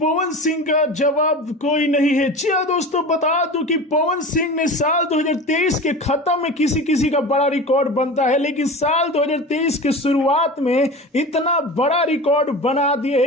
सिंह का जवाब कोई नहीं है। जी हाँ दोस्तों, बता दूं कि पवन सिंह ने साल 2023 के खत्म में किसी किसी का बड़ा रिकॉर्ड बनता है, लेकिन साल 2023 के शुरुआत में इतना बड़ा रिकॉर्ड बना दिए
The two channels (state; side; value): normal; both; correlation 0.32